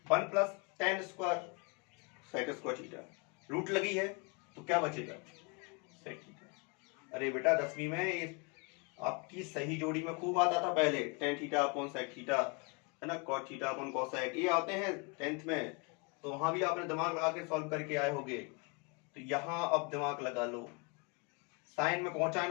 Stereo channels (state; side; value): quieter; right; 31.5 dB